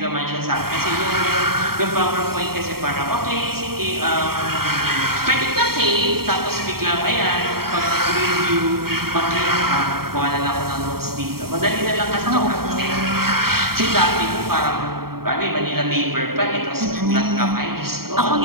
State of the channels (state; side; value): late; left; 0.94 ms